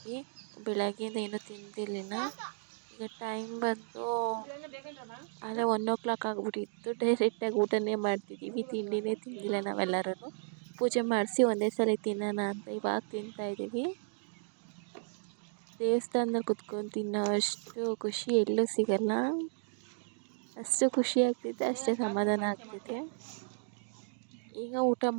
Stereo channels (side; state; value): left; silent; digital silence